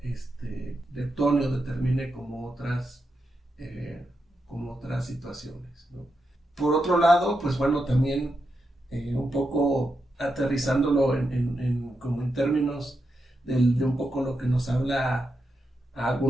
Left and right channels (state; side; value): normal; both; correlation 0.86